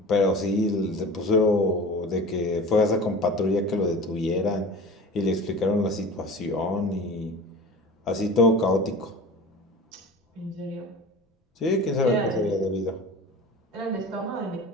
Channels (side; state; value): both; normal; correlation 0.37